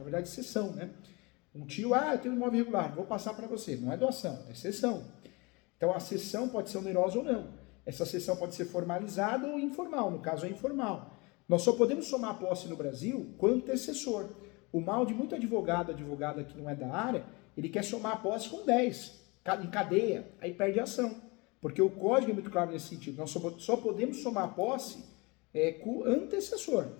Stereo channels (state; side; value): quieter; right; 26.5 dB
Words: verdade cessão, né? Um tio, eu tenho um imóvel irregular, vou passar para você. Não é doação, é cessão. Então a cessão pode ser onerosa ou não. Essa cessão pode ser formalizada ou informal, no caso é informal. Nós só podemos somar a posse no Brasil com antecessor. O mal de muito advogada que não é da área, ele quer somar a posse com 10, em cadeia, aí perde a ação. Porque o código é muito claro nesse sentido. Nós só podemos somar a posse com antecessor.